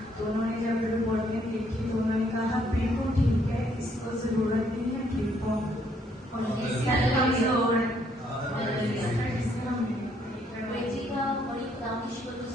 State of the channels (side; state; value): both; normal; correlation 0.69